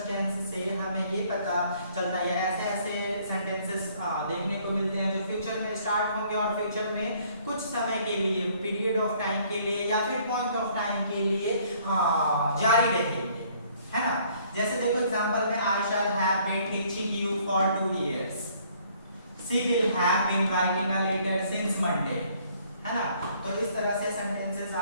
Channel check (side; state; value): both; inverted; correlation -0.62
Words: tense से हमें ये पता चलता है ऐसे ऐसे sentences देखने को मिलते हैं जो फ्यूचर में स्टार्ट होंगे और फ्यूचर में कुछ समय के लिए, पीरियड ऑफ टाइम के लिए या फिर पॉइंट ऑफ टाइम के लिए जारी रहेंगे, है ना. जैसे देखो एग्जांपल में I shall have been teaching you for 2 years. She will have been writing a letter since Monday, है ना. तो इस तरह से सेंटेंसेस